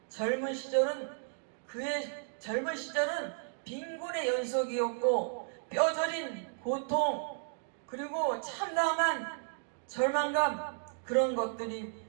그의 젊은 시절은 빈곤의 연속이었고 뼈저린 고통 그리고 참담한 절망감 그런 것들이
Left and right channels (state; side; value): silent; left; digital silence